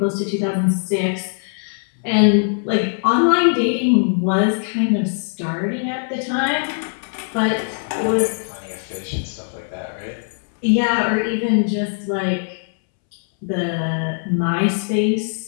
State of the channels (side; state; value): right; silent; 65 dB below the other